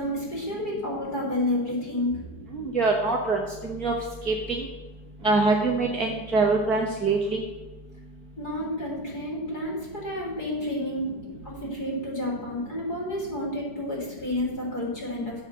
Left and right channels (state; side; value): late; right; 4.7 ms